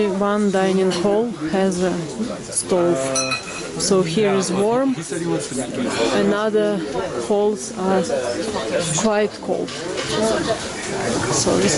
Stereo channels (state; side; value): identical; both; correlation 1.00